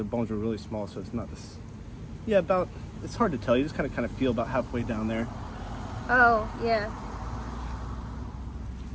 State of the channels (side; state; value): both; identical; correlation 1.00